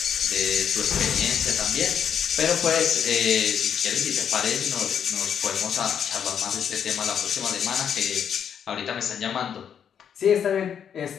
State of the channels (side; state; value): right; quieter; 8.2 dB